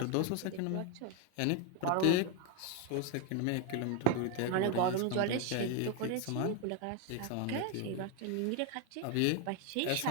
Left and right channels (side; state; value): both; different; correlation 0.01